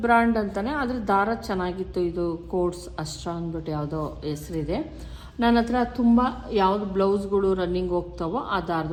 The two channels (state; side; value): identical; both; correlation 1.00